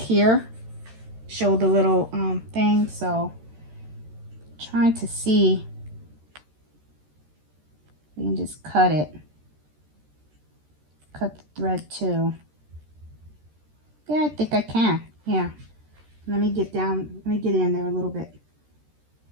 Show the little thing. So, trying to see. We can just cut it. Cut the thread too. Yeah, I think I can. Yeah. Let me get down. Let me get in there a little bit.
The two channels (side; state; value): left; late; 13 ms